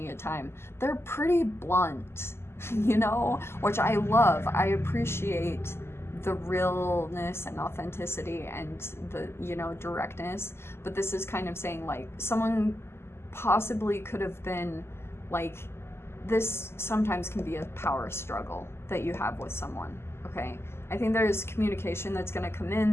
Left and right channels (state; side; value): late; right; 0.12 ms